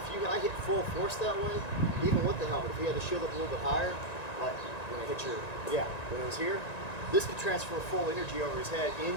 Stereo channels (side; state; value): right; late; 1.9 ms